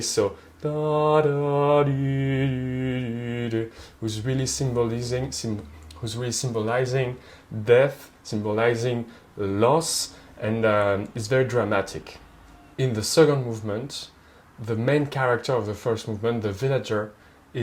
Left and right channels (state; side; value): identical; both; correlation 1.00